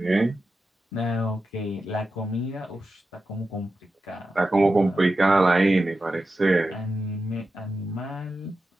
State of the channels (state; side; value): normal; both; correlation 0.91